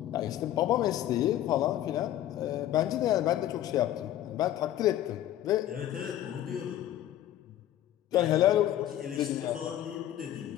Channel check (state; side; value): quieter; right; 12.6 dB